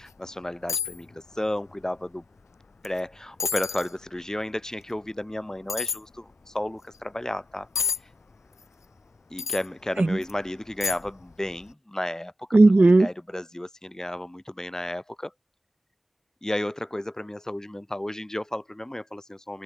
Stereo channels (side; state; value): both; normal; correlation 0.91